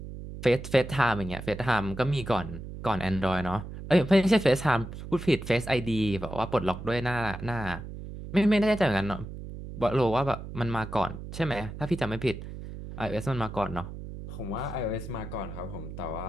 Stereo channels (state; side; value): noise; right; hum, 10 dB below the sound